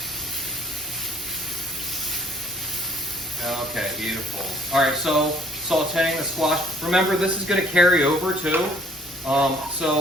Okay, beautiful. All right, so sauteing the squash. Remember, this is going to carry over too.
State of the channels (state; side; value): normal; both; correlation 0.60